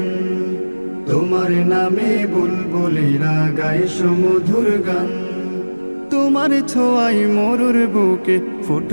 তোমার নামে বুলবুলিরা গায় সুমধুর গান। তোমার ছোঁয়ায় মরুর বুকে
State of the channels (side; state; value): both; inverted; correlation -1.00